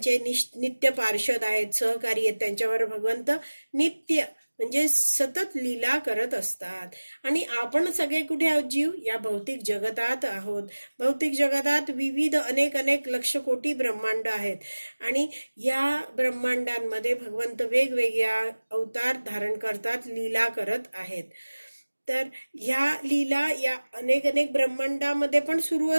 नित्य पार्षद आहेत, सहकारी आहेत, त्यांच्यावर भगवंत नित्य म्हणजे सतत लीला करत असतात. आणि आपण सगळे कुठे आहोत, जीव या भौतिक जगतात आहोत. भौतिक जगतात विविध अनेक लक्ष कोटी ब्रह्मांड आहेत आणि या ब्रह्मांडांमध्ये भगवंत वेगवेगळ्या अवतार धारण करतात, लीला करत आहेत. तर ह्या लीला या अनेक ब्रह्मांडामध्ये पण सुरू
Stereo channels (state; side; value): inverted; both; correlation -1.00